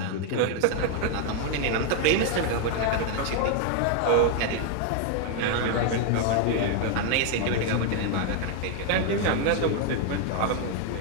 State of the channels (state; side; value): different; both; correlation 0.00